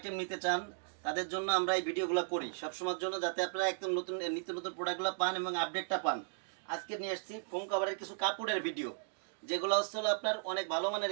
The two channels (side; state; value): left; silent; digital silence